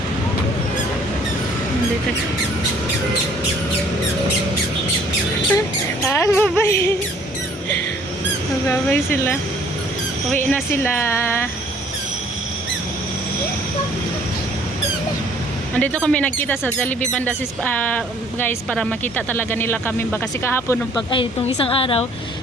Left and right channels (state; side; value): normal; both; correlation 0.58